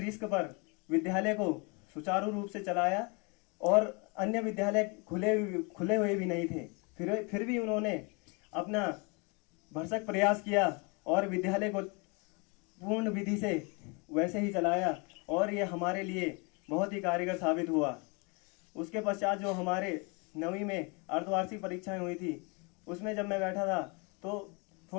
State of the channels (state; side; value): quieter; right; 31.3 dB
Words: पर विद्यालय को सुचारू रूप से चलाया, और अन्य विद्यालय खुले हुए भी नहीं थे, फिर भी उन्होंने अपना भरसक प्रयास किया और विद्यालय को पूर्ण विधि से वैसे ही चलाया, और ये हमारे लिए बहुत ही कारगर साबित हुआ। उसके पश्चात जो हमारे 9वीं में अर्धवार्षिक परीक्षाएं हुई थी, उसमें जब मैं बैठा था तो